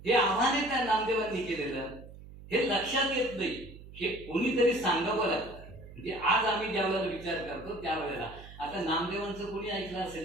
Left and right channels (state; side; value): noise; right; hum, 17 dB below the sound